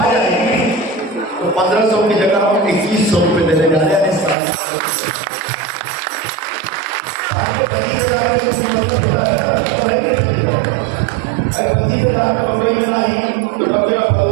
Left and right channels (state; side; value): drops out; left; at 4.4 s